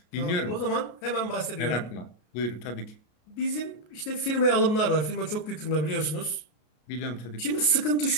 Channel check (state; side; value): late; right; 33 ms